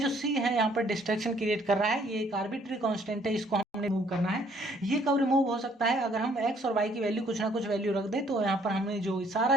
c है यहाँ पर डिस्ट्रैक्शन क्रिएट कर रहा है, ये एक आर्बिट्री कांस्टेंट है, इसको हमने रिमूव करना है। ये कब रिमूव हो सकता है, अगर हम x और y की वैल्यू कुछ ना कुछ वैल्यू रख दें तो यहाँ पर हमने जो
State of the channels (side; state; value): both; normal; correlation 0.63